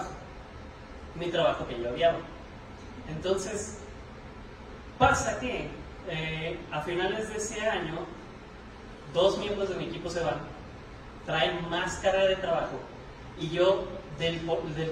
trabajo que yo odiaba. Entonces, pasa que a finales de ese año, 2 miembros de mi equipo se van, traen más carga de trabajo, y yo, del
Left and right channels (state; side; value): identical; both; correlation 1.00